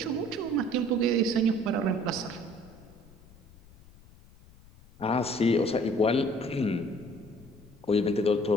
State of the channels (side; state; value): left; noise; rumble, 24 dB below the sound